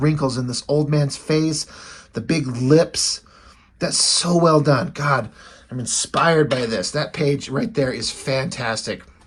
wrinkles in this old man's face. The big lips. That's so well done. God, I'm inspired by this. That page right there is fantastic.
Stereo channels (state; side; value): identical; both; correlation 1.00